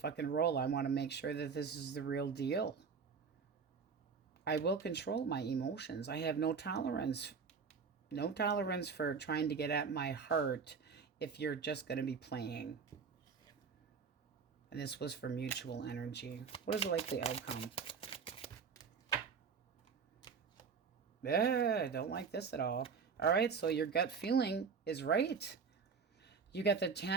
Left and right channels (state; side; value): quieter; left; 5.7 dB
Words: roll. I want to make sure that this is the real deal. I will control my emotions. I have no tolerance. No tolerance for trying to get at my heart if you're just going to be playing. And this was for mutual energy. What is the likely outcome? Yeah, I don't like this at all. All right, so your gut feeling is right. You got the